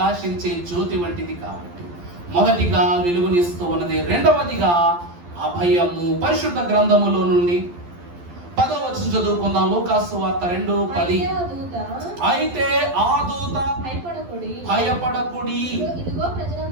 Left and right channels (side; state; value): left; late; 12 ms